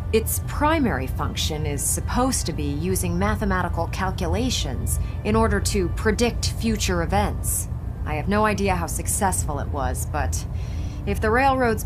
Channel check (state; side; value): identical; both; correlation 1.00